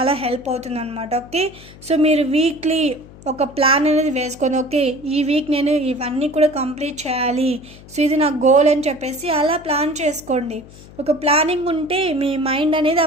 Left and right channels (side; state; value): left; noise; hum, 20 dB below the sound